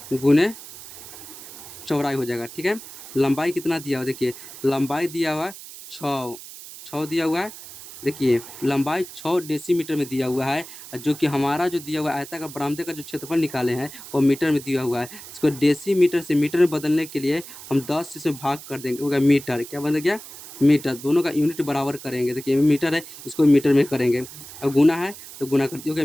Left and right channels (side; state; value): right; noise; hiss, 15 dB below the sound